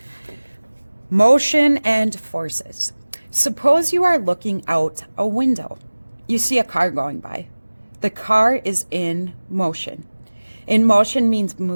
Motion and forces. Suppose you are looking out a window. You see a car going by. The car is in motion. In motion means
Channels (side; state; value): both; inverted; correlation -1.00